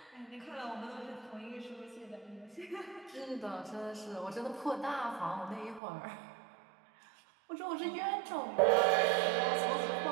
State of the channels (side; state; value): left; drops out; at 5.8 s